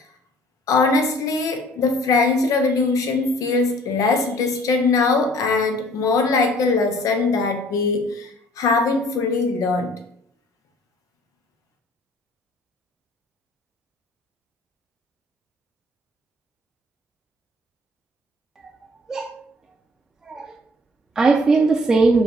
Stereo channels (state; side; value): normal; both; correlation 0.54